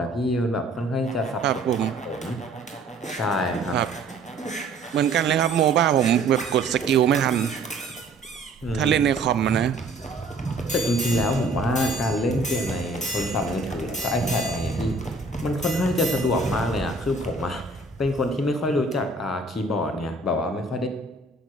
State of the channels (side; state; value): left; quieter; 3.0 dB